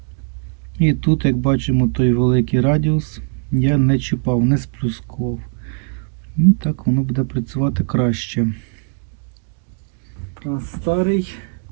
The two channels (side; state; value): left; quieter; 39.9 dB